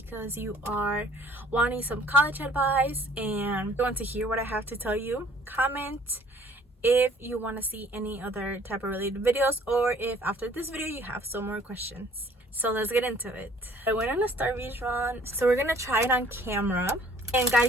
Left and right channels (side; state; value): both; normal; correlation 0.55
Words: you are wanting some college advice and you want to hear what I have to tell you. Comment if you want to see any other type of related videos, or if after this video you have some more questions. So let's get into it. I went on a Starbucks run, so we're gonna try it on camera. And